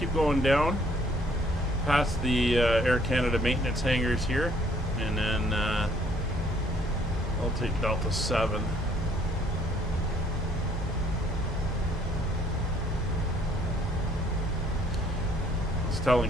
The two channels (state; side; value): normal; both; correlation 0.62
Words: going down past the Air Canada maintenance hangars here, and then I'll take Delta 7. I was telling